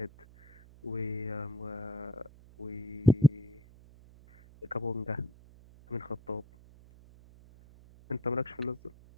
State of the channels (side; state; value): right; noise; hum, 22 dB below the sound